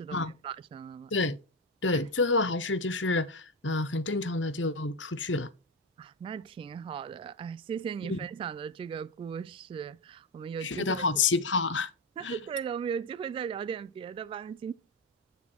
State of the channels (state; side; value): normal; both; correlation 0.11